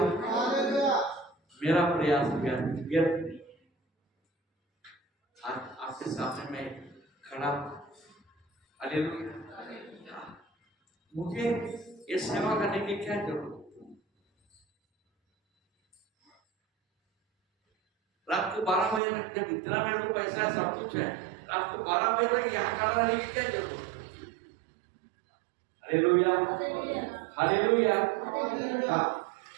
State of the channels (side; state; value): left; drops out; at 19.0 s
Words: मेरा प्रयास व्यर्थ नहीं, आज आपके सामने मैं खड़ा हूं, हालेलुया। मुझे ये सेवा करने की क्या जरूरत? रात को 12 बजे तक, जब इतना मेरे को पैसा है, सब कुछ है, रात को 12 बजे तक यहाँ खड़ा रहने की क्या जरूरत? Hallelujah hallelujah.